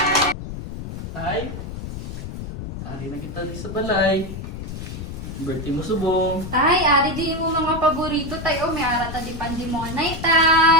Tay, ari na kita di sa balay. Birthday mo subong. Tay, ari di mo mga paborito, tay. O, may ara ta di pandi mo anay,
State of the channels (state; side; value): noise; left; rumble, 8 dB below the sound